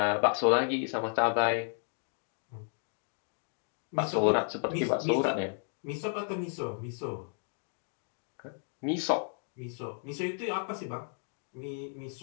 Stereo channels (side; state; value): right; silent; 56 dB below the other